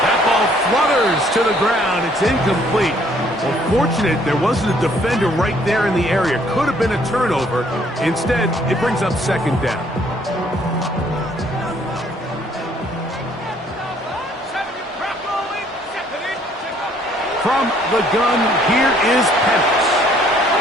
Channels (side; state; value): both; normal; correlation 0.63